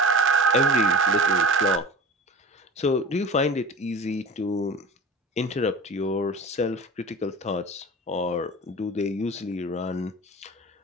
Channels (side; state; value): both; normal; correlation 0.36